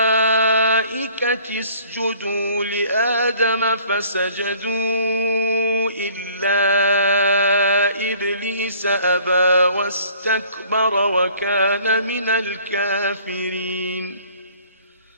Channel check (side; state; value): both; inverted; correlation -0.54